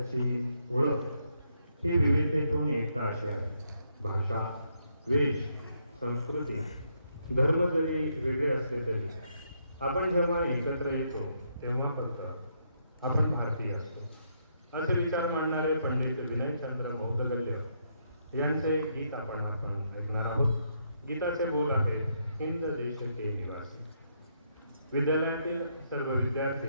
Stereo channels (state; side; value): inverted; both; correlation -0.76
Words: ओळख ही विविधतेतून एकता अशी आहे. भाषा, वेश, संस्कृती, धर्म जरी वेगळे असले तरी आपण जेव्हा एकत्र येतो तेव्हा फक्त आपण भारतीय असतो असे विचार मांडणारे पंडित विनयचंद्र बौद्धगल्य यांचे गीत आपण ऐकणार आहोत. गीताचे बोल आहे, हिंद देश के निवासी. विद्यालयातील सर्व